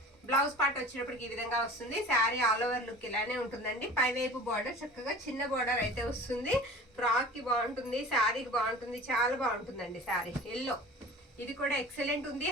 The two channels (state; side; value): normal; both; correlation 0.40